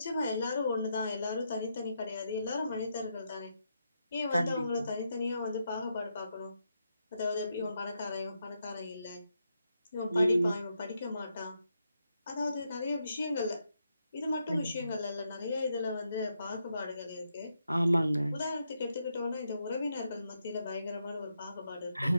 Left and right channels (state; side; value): inverted; both; correlation -0.81